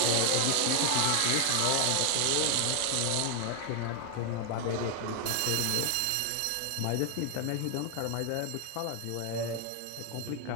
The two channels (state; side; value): different; both; correlation 0.00